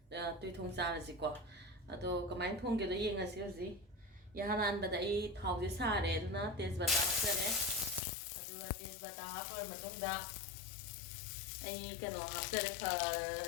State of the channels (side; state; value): right; drops out; at 8.0 s